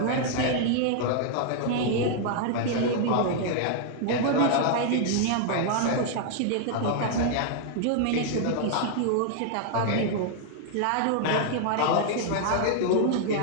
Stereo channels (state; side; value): different; both; correlation -0.01